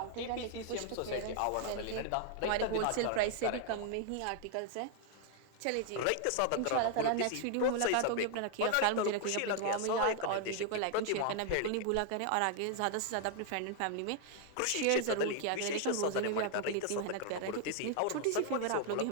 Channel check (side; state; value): both; different; correlation 0.00